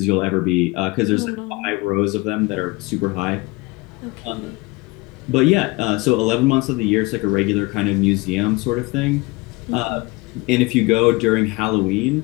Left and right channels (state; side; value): quieter; right; 24.1 dB